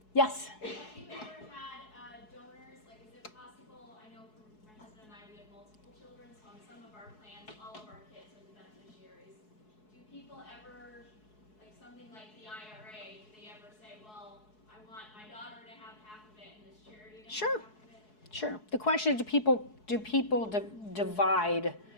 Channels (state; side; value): late; right; 4.7 ms